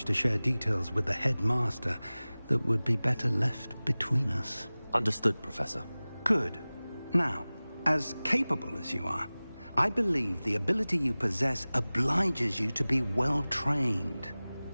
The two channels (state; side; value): inverted; both; correlation -0.99